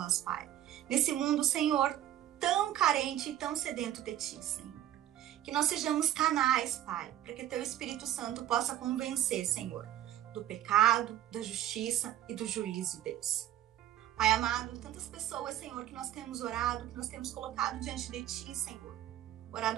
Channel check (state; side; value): quieter; left; 12.2 dB